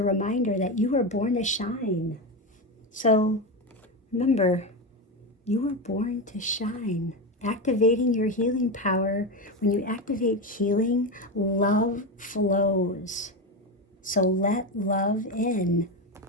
reminder that you were born to shine. So remember, you were born to shine. Activating your healing power. When you activate healing, love flows. So let love in.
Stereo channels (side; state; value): both; normal; correlation 0.15